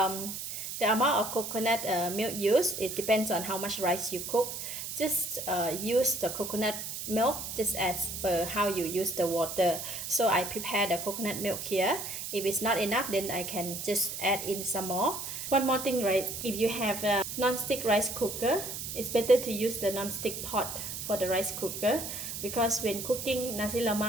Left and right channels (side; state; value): right; noise; hiss, 6 dB below the sound